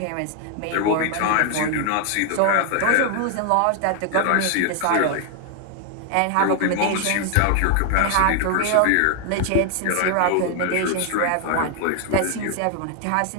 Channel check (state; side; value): different; both; correlation 0.00